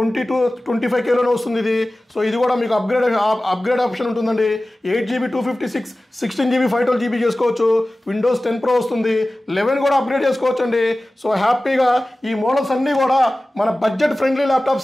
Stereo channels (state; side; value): normal; both; correlation 0.97